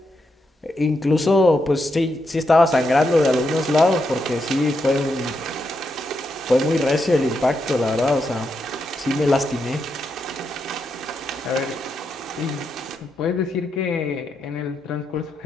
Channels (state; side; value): normal; both; correlation 0.83